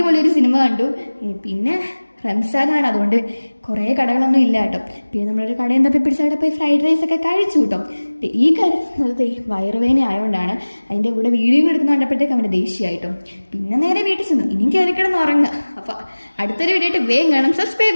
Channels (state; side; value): inverted; both; correlation -1.00